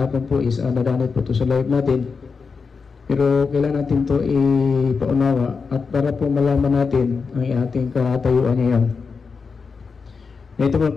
po is nadanit po ito sa live natin, pero kailangan natin ito ipaunawa at para po malaman natin ang ating katayuan ngayon. Ito mga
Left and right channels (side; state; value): right; quieter; 5.1 dB